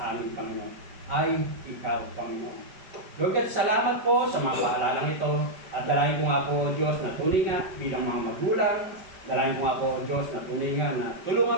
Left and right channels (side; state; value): left; late; 5.1 ms